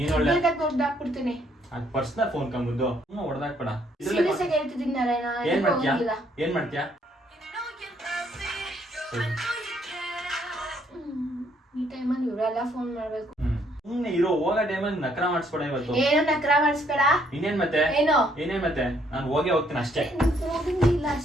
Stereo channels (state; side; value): normal; both; correlation 0.68